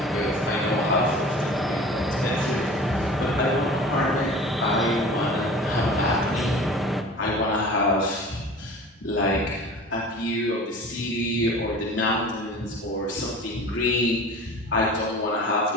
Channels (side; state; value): both; normal; correlation 0.41